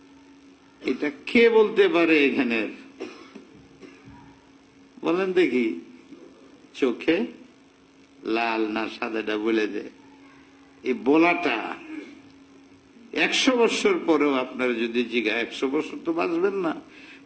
এটা কে বলতে পারে এখানের? বলেন দেখি, চোখে লাল না সাদাটা বলে দে। এই বলাটা 100 বছর পরেও আপনারা যদি জিগায়, 100 বছর তো বাঁচবেন না,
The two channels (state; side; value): identical; both; correlation 1.00